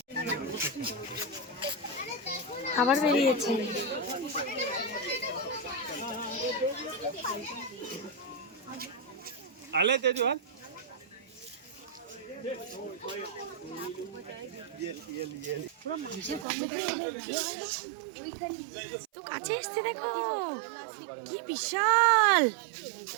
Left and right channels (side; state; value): left; drops out; at 16.4 s